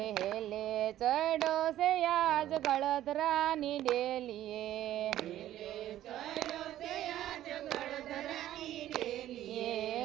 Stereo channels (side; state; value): left; quieter; 13.0 dB